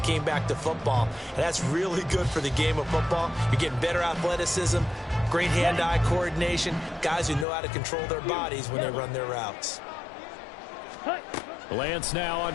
came back to football. And that's really good for the game of football. You're getting better athleticism, great hand-eye coordination, guys who know how to control their bodies when they run their routes. Lance now on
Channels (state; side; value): drops out; right; at 7.5 s